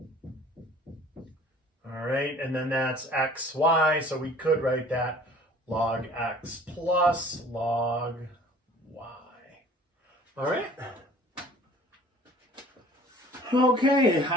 All right, and then that's x, y, so we could write that log x plus log y. All right. Okay,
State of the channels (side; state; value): both; normal; correlation 0.50